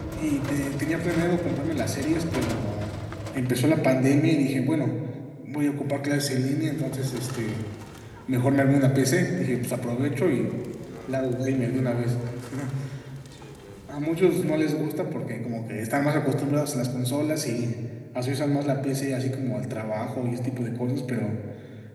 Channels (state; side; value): identical; both; correlation 1.00